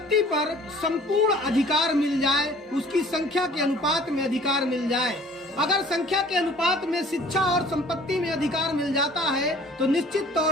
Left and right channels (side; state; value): both; normal; correlation 0.52